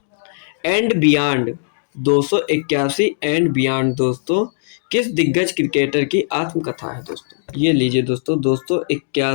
एंड बियॉन्ड 281 एंड बियॉन्ड दोस्तों किस दिग्गज क्रिकेटर की आत्मकथा है दोस्तों? ये लीजिए दोस्तों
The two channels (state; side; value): silent; right; digital silence